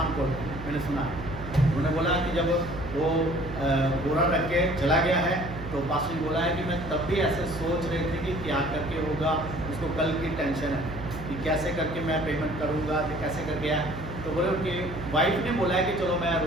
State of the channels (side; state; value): right; noise; hum, 10 dB below the sound